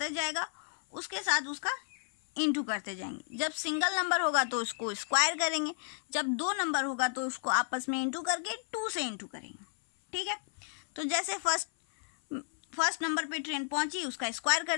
जाएगा उसके साथ उसका इंटू करते जाएंगे। जब सिंगल नंबर होगा तो उसको स्क्वायर करेंगे, जब 2 नंबर होगा तो उसको आपस में इंटू करके 2 से इंटू करेंगे, ठीक है। तो जैसे फर्स्ट नंबर पे ट्रेन पहुंची, उसका स्क्वायर कर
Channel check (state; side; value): silent; right; 56 dB below the other